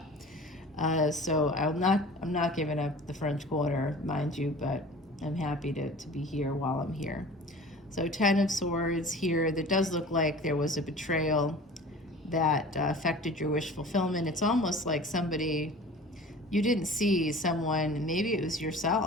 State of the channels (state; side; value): normal; both; correlation 0.42